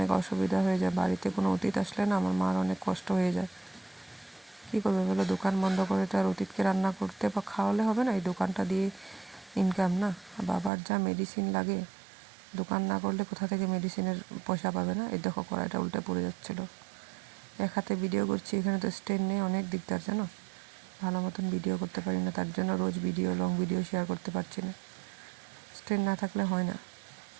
অসুবিধা হয়ে যায়। বাড়িতে কোনো অতিথি আসলে না আমার মার অনেক কষ্ট হয়ে যায়। কী করবে বলো, দোকান বন্ধ করে তো আর অতিথিকে রান্না করতে বা খাওয়ালে হবে না, এই দোকানটা দিয়ে ইনকাম না। বাবার যা মেডিসিন লাগে, দোকান না করলে কোথা থেকে মেডিসিনের পয়সা পাবে না। এই দেখো কড়াইটা উল্টে পড়ে যাচ্ছিলো, এক হাতে ভিডিও করছি, এখানে তো স্ট্যান্ড নেই, অনেক দিকদার জানো, ভালো মতন ভিডিও করতে পারি না, তার জন্য রোজ লং ভিডিও শেয়ার করতে পারছি না, স্ট্যান্ড না থাকলে হয় না।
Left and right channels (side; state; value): left; drops out; at 10.7 s